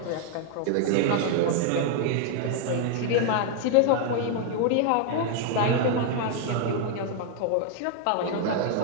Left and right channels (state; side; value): different; both; correlation 0.00